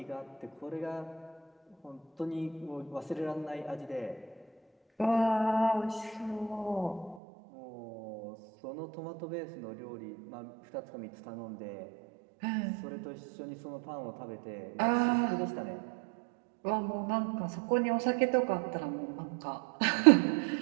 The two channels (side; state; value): left; drops out; at 7.2 s